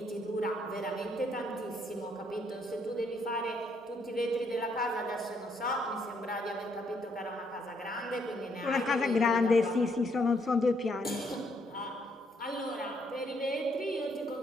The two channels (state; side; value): normal; both; correlation 0.71